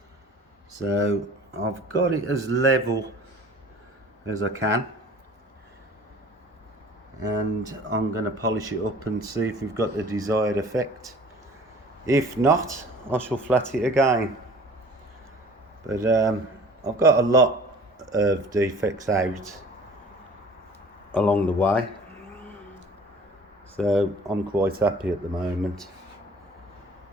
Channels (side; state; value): both; normal; correlation 0.47